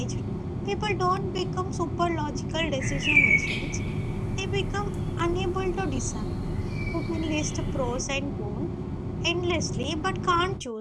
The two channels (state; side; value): identical; both; correlation 1.00